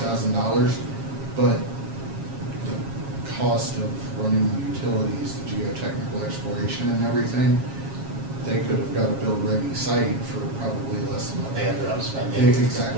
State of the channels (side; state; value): left; late; 7.3 ms